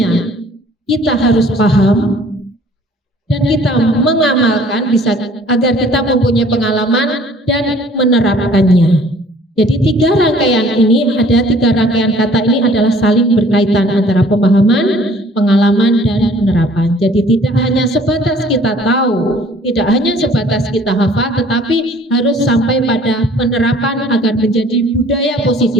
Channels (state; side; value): normal; both; correlation 0.54